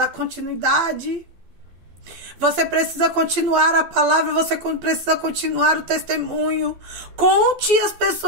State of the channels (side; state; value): left; late; 12 ms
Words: continuidade. Você precisa continuar a palavra, você precisa continuar o testemunho. Conte às